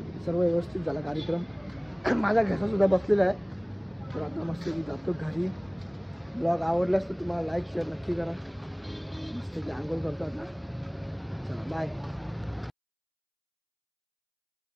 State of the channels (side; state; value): both; identical; correlation 1.00